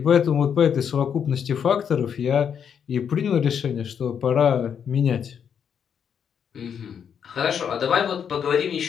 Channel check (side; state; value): right; quieter; 7.8 dB